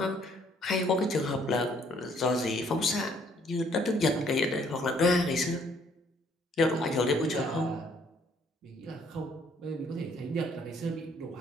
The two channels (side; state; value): both; normal; correlation 0.64